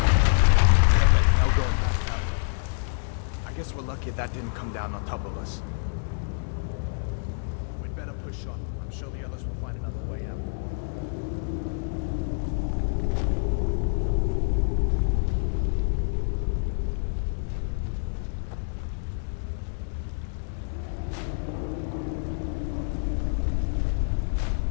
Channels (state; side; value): silent; right; digital silence